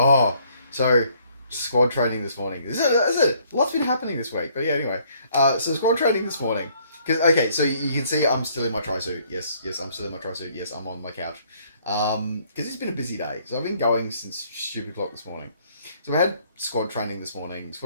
So squad training this morning. Is it? Lots been happening this week. But yeah, anyway. So squad training this morning. Okay, so you can see I'm still in my tri-suit. Yes, I'm still in my tri-suit. Yes, I'm on my couch. Because it's been a busy day. So I've been going since stupid o'clock this morning. So we had squad training this morning.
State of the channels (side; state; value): both; inverted; correlation -0.64